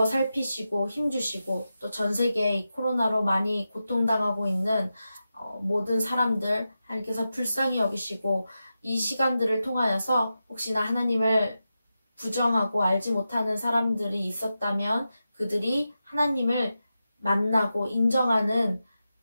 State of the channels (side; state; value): both; inverted; correlation -0.91